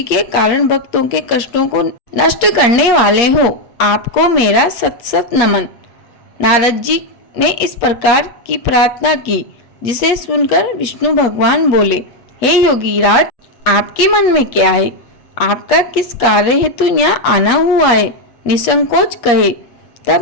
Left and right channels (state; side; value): late; right; 8.4 ms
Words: के कारण भक्तों के कष्टों को नष्ट करने वाले हो। आपको मेरा सत सत नमन। नारद जी ने इस प्रकार की प्रार्थना की जिसे सुनकर विष्णु भगवान बोले, हे योगीराज, आपके मन में क्या है? आपका किस कार्य हेतु यहाँ आना हुआ है? निसंकोच कहे। तब